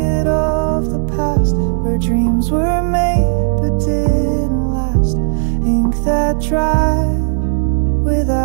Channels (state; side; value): silent; left; digital silence